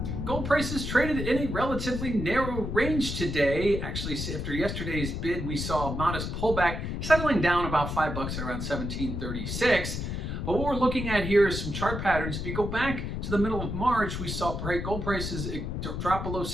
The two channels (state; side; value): noise; left; rumble, 4 dB below the sound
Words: Gold prices traded in a relatively narrow range today. Actually, after yesterday's bid, we saw a modest pullback, settling down about $5 at around 1736. But what we're looking at here is some chart patterns. If you go back to the middle of March, we saw gold prices drop below